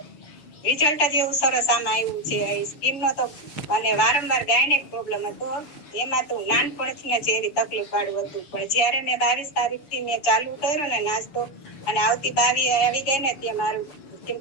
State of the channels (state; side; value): late; right; 6.9 ms